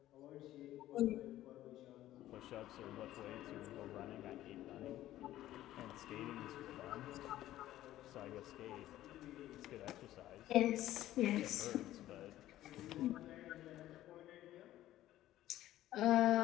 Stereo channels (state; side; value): quieter; right; 14.1 dB